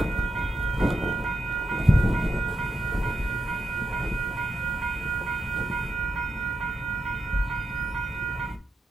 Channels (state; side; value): normal; both; correlation 0.85